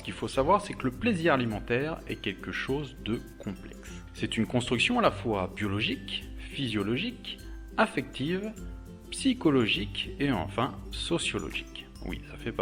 qu'il faut savoir, c'est que le plaisir alimentaire est quelque chose de complexe. C'est une construction à la fois biologique, physiologique, affective, psychologique et enfin sociologique. Oui, ça fait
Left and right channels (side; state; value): both; identical; correlation 1.00